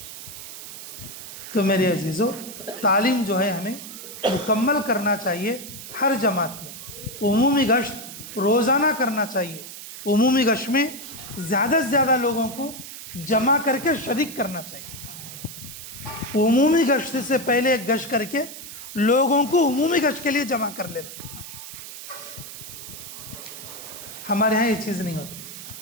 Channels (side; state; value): right; noise; hiss, 12 dB below the sound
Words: तो मेरे अजीज़ों, तालीम जो है हमें मुकम्मल करना चाहिए हर जमात में। उमूमी गश्त रोज़ाना करना चाहिए। उमूमी गश्त में ज़्यादा से ज़्यादा लोगों को जमा करके शरीक करना चाहिए। उमूमी गश्त से पहले एक गश्त करके लोगों को उमूमी गश्त के लिए जमा कर लेना। हमारे यहाँ ये चीज़ नहीं होती।